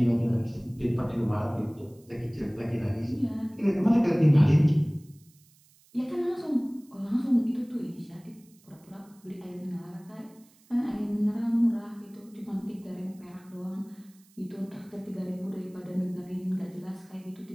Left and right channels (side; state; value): right; noise; hiss, 30 dB below the sound